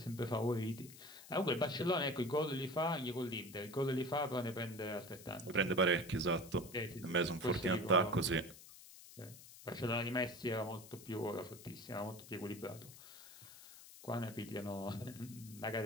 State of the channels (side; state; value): left; noise; hiss, 17 dB below the sound